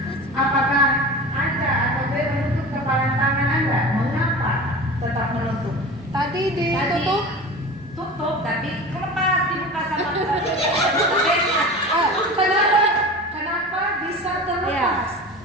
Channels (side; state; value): both; normal; correlation 0.34